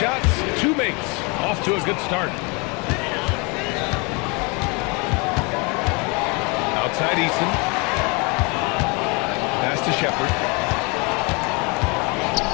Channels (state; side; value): quieter; right; 29.9 dB